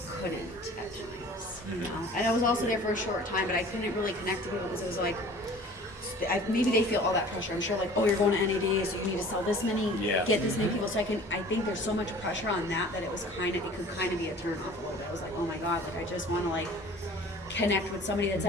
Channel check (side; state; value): both; normal; correlation 0.46